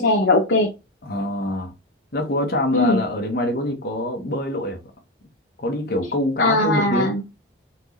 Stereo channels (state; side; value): normal; both; correlation 0.12